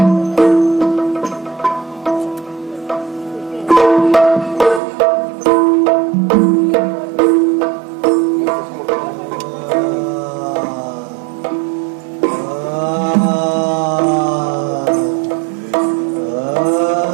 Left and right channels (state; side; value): drops out; left; at 4.8 s